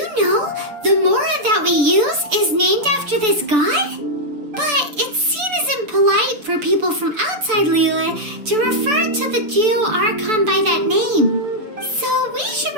know the Mora that we use is named after this god? But it's seen as impolite for people from outside Liyue to refer to the Geo-Archon by that name. So we should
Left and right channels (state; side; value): late; left; 6.8 ms